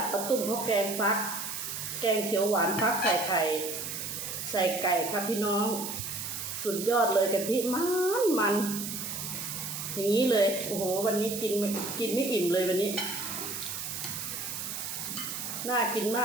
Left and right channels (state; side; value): noise; right; hiss, 5 dB below the sound